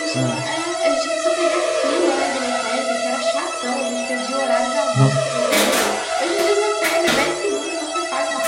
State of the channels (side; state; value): both; identical; correlation 1.00